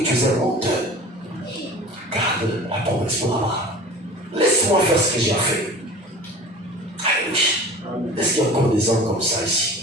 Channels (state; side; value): normal; both; correlation 0.39